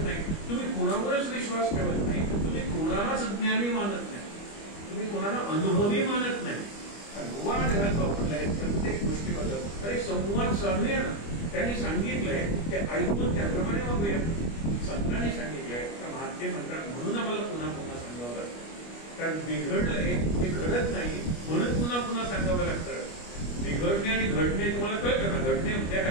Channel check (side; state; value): right; late; 25 ms